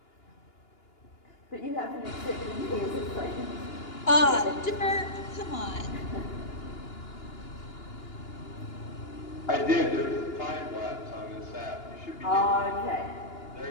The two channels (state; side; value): late; right; 2.8 ms